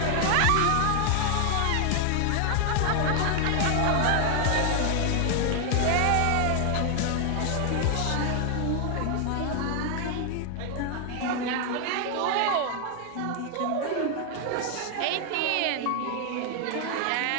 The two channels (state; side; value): different; both; correlation 0.00